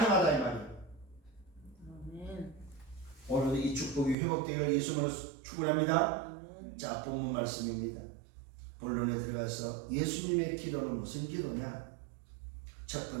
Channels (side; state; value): left; drops out; at 4.2 s